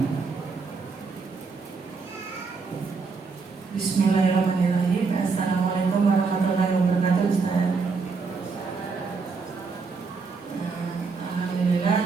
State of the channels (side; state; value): left; quieter; 4.6 dB